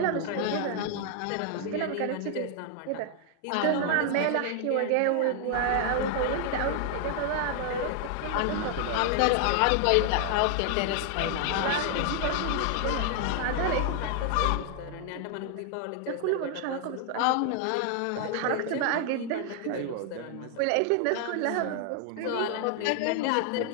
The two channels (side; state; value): both; different; correlation 0.00